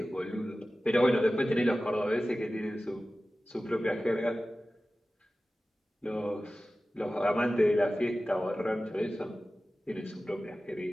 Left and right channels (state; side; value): normal; both; correlation 0.96